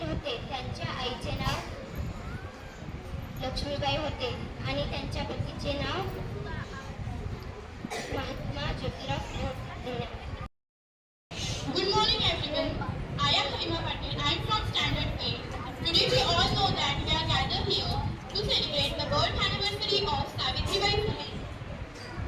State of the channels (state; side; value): identical; both; correlation 1.00